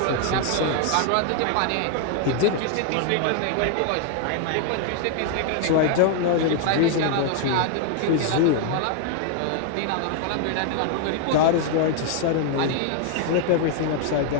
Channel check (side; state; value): both; different; correlation 0.00